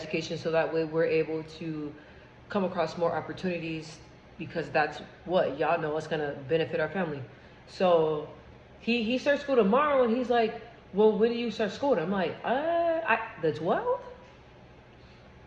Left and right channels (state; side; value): identical; both; correlation 1.00